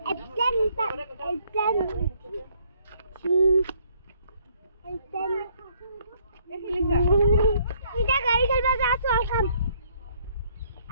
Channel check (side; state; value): both; inverted; correlation -0.66